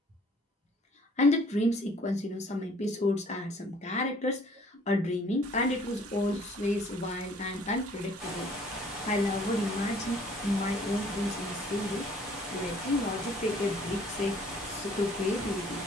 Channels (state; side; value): normal; both; correlation 0.57